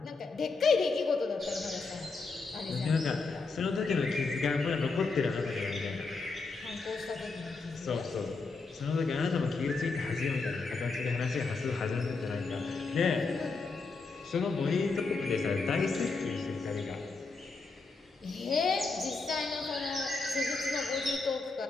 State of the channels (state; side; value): quieter; right; 4.1 dB